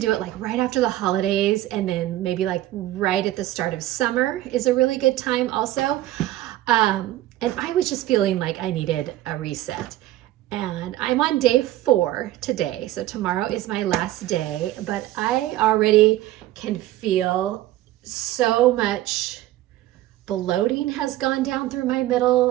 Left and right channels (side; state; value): left; quieter; 15.0 dB